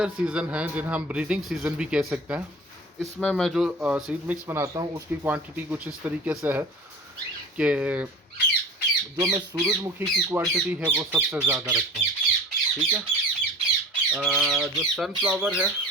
सीज़न है जिन्हें हम ब्रीडिंग सीज़न भी कह सकते हैं, इसमें मैं जो सीड मिक्स बनाता हूँ उसकी क्वांटिटी कुछ इस तरीके से है कि जो मैं सूरजमुखी की क्वांटिटी है वो सबसे ज़्यादा रखता हूँ, ठीक है। जो सनफ्लावर है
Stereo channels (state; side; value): normal; both; correlation 0.39